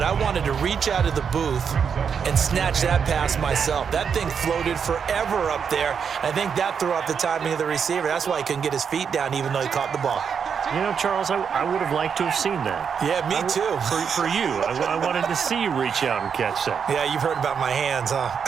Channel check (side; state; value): left; quieter; 6.8 dB